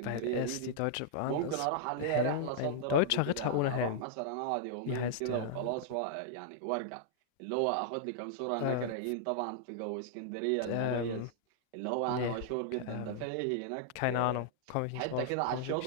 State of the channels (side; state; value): both; different; correlation -0.01